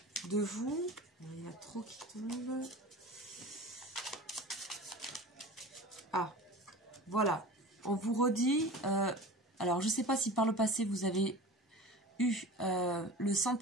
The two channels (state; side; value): normal; both; correlation 0.36